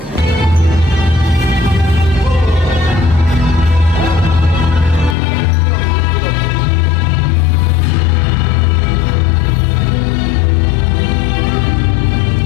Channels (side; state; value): right; drops out; at 5.2 s